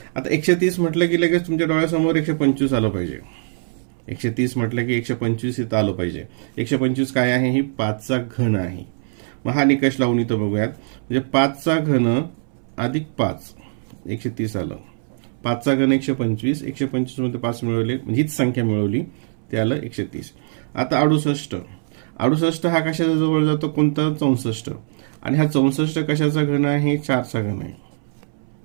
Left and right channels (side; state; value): left; silent; 64 dB below the other